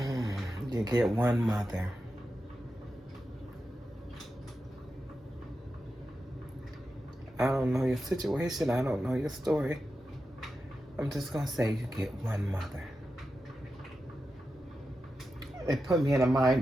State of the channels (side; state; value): both; normal; correlation 0.90